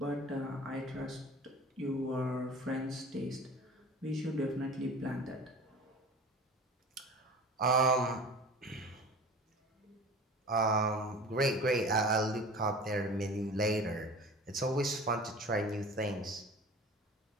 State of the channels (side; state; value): both; normal; correlation 0.39